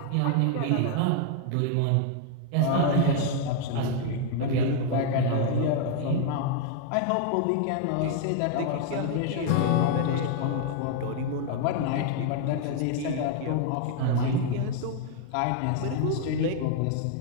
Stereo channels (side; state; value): both; different; correlation 0.00